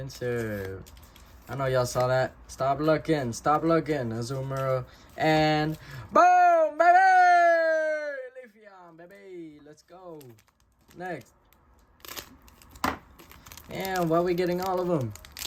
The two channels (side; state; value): both; identical; correlation 1.00